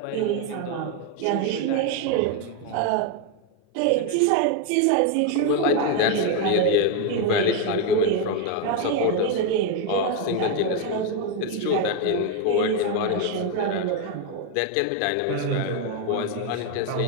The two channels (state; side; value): different; both; correlation 0.01